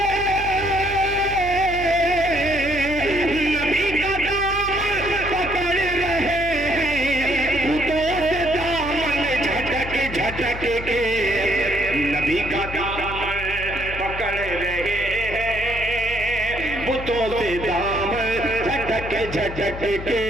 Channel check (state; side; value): noise; left; hum, 10 dB below the sound